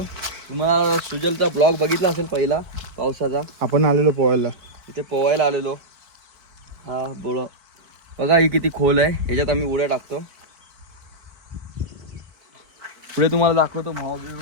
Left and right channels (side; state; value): left; late; 4.5 ms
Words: तुम्हाला सुजलचा ब्लॉग बघितला असेल पहिला पावसाचा. आपण आलेलो पोहायला, इथे पोहायला आलेलो. हा बोल बघा, ही किती खोल आहे. ह्याच्यात आम्ही उड्या टाकतो. पुढे तुम्हाला दाखवतो. मावा